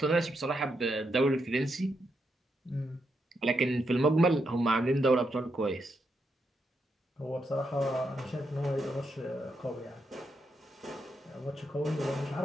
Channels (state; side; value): normal; both; correlation 0.82